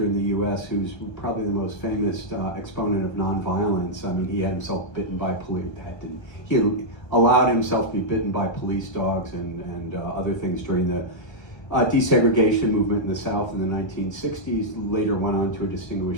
in the US, who's probably the most famous exponent of nonviolence. I mean, he had himself bitten by police. He allowed himself to be bitten by police dogs and other things during the desegregation movement in the South in the 1960s, later went on to a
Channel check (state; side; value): late; right; 1.3 ms